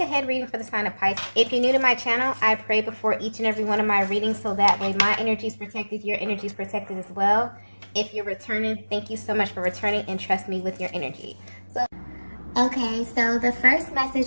reading for the sign of Pisces. If you're new to my channel, I pray before each and every one of my readings so that way my energy is protected, your energy is protected as well. If you're returning, thank you so much for returning and trust me with your energy. Okay, so the first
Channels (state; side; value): inverted; both; correlation -1.00